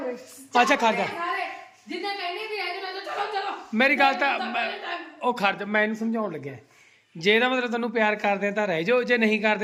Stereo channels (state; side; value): identical; both; correlation 1.00